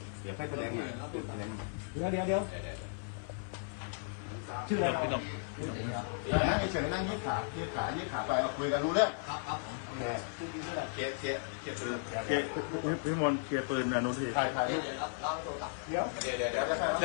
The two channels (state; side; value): silent; right; 54 dB below the other